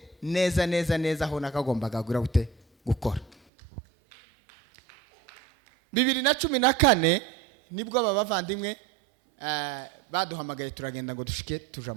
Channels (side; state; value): left; drops out; at 3.4 s